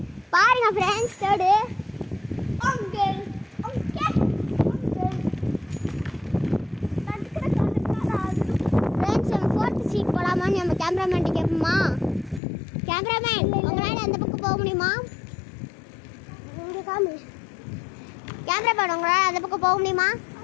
பாருங்க ஃப்ரெண்ட்ஸ் தேர்டு. ஃப்ரெண்ட்ஸ் நம்ம ஃபோர்த் சீட் போகலாமான்னு நம்ம கேமராமேன்ட்டு கேட்போமா? கேமராமேன் உங்களால் அந்த பக்கம் போக முடியுமா? கேமராமேன் உங்களால் அந்த பக்கம் போக முடியுமா?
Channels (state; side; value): drops out; right; at 12.4 s